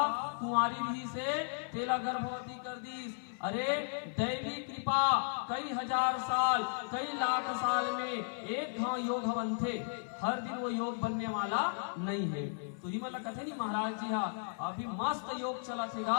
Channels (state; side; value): silent; right; 54 dB below the other